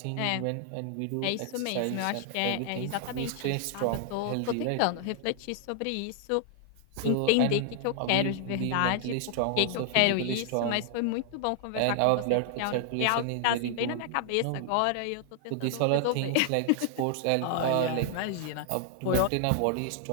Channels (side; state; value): both; different; correlation 0.00